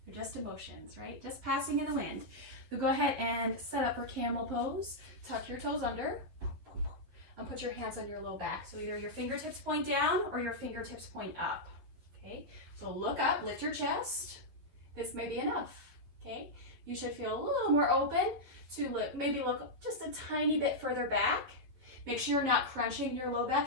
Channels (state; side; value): late; left; 12 ms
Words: They're just emotions, right? Just passing in the wind. So go ahead and set up for camel pose. Tuck your toes under and put your hands on your low back. So either your fingertips point down or your fingertips point up, okay? So look up, lift your chest. This may be enough, okay? You should feel a little more open to look, maybe look just a tiny bit further back. Make sure you're not crunching your low back.